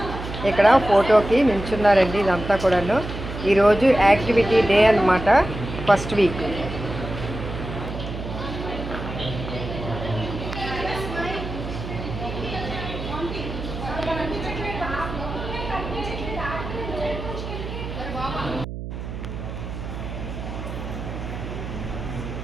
ఇక్కడ ఫోటోకి నిల్చున్నారండి. ఇదంతా కూడాను ఈరోజు యాక్టివిటీ డే అన్నమాట, ఫస్ట్ వీక్.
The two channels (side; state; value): right; noise; hum, 8 dB below the sound